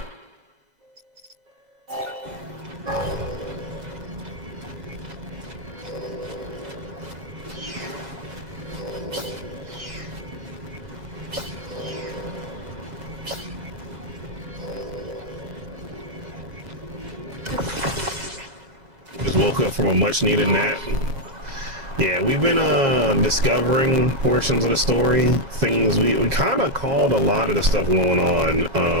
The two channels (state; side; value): late; left; 7.3 ms